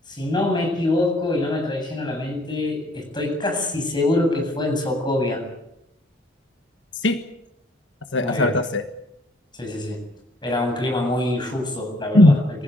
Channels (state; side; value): normal; both; correlation 0.62